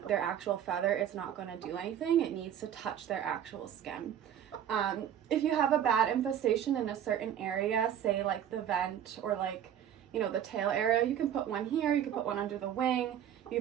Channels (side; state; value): left; quieter; 9.8 dB